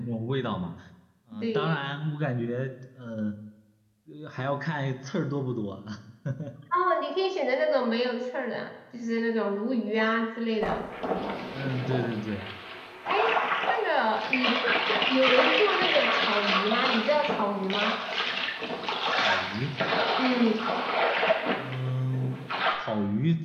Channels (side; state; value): both; identical; correlation 1.00